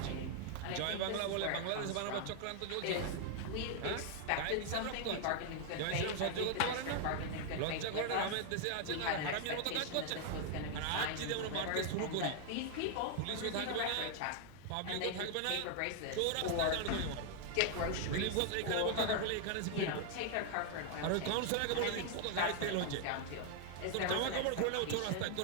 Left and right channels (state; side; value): different; both; correlation 0.00